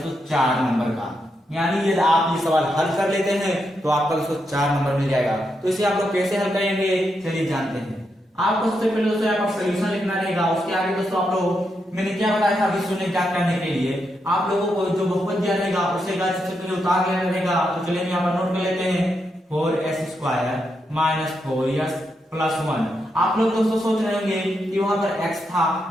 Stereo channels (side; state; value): both; normal; correlation 0.83